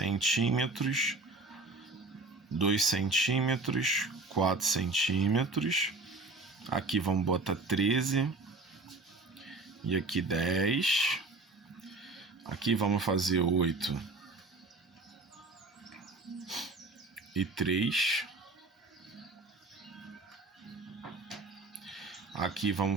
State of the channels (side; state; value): left; quieter; 3.3 dB